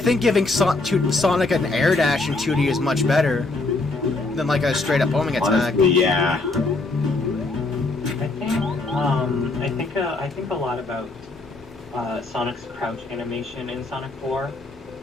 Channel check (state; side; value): quieter; right; 3.3 dB